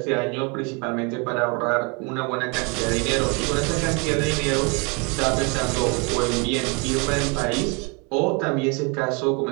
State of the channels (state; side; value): quieter; left; 32.4 dB